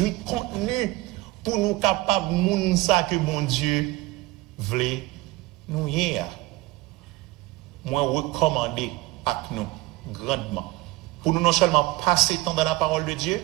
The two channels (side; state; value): left; quieter; 19.6 dB